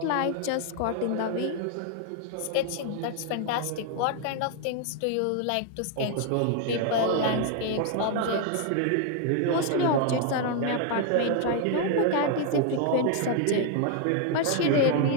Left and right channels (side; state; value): both; different; correlation 0.00